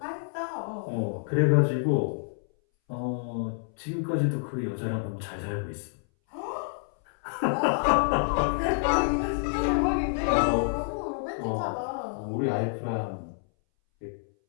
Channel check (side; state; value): right; silent; 59 dB below the other